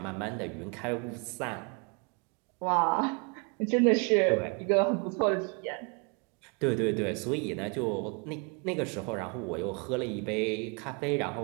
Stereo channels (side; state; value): left; quieter; 33.9 dB